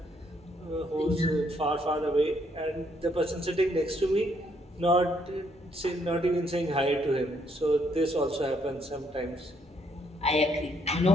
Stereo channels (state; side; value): normal; both; correlation 0.71